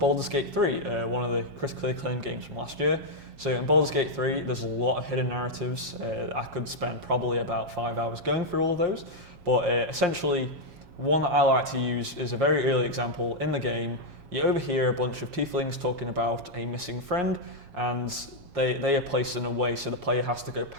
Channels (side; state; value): left; late; 7.3 ms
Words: Gate 3, one of the critically acclaimed games from last year. So in Baldur's Gate 3, there's a lot of hidden narratives. I could spend probably about 5 hours going through all of those, but essentially, one that I like to use is a very early example in the game. You overhear a bunch of tieflings talking about a missing friend, and they are placed in a way so the player has to go